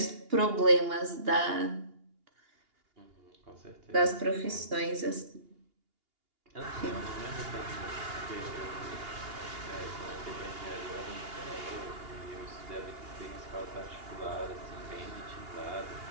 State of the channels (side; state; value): left; late; 2.8 ms